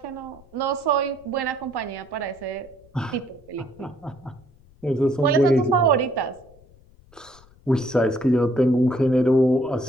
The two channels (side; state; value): left; noise; rumble, 27 dB below the sound